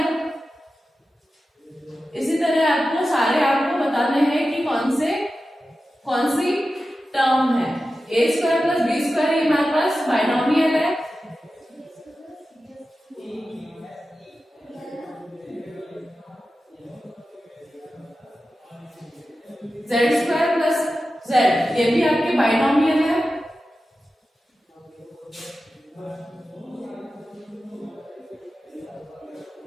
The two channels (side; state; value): both; normal; correlation 0.93